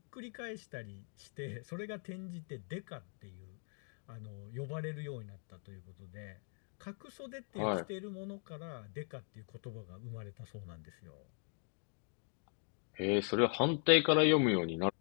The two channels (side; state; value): right; silent; 51 dB below the other